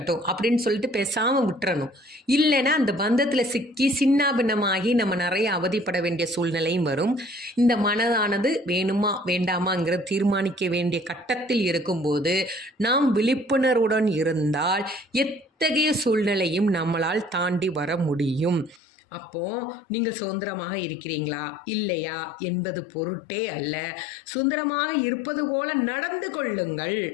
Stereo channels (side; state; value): right; drops out; at 18.8 s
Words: அப்படின்னு சொல்லிட்டு பேசாமல் விட்டுறணும். இல்லைன்னா அந்த பந்தத்தில் சிக்கி சின்னாபின்னமாகி நம்ம நிறைய அவதிப்பட வேண்டிய சூழ்நிலையும் வரும். இந்த மனதானது வேணுமா வேண்டாமாங்கிற தீர்மானிக்க வேண்டிய கட்டத்தில் இருக்கும்போது நாம் விழிப்புணர்வுடன் இருந்தால் எத்தகைய சூழ்நிலையும் நம்மளால் தாண்டி வர முடியும். அப்போது நீங்கள் சுதந்திரமாக இருக்கிறீங்களா இல்லையா என்பது பொருட்டே அல்ல. சுதந்திரமாக இருப்பது போல நடந்து கொள்ளுங்கள்.